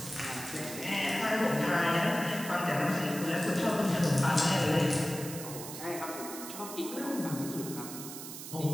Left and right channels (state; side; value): noise; right; hiss, 10 dB below the sound